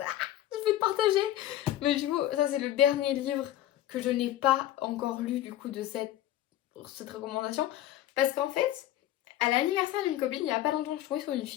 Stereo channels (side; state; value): right; quieter; 13.1 dB